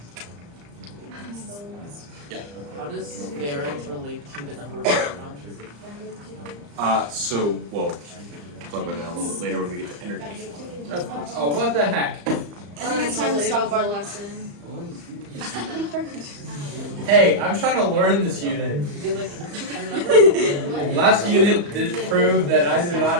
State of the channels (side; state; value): left; late; 35 ms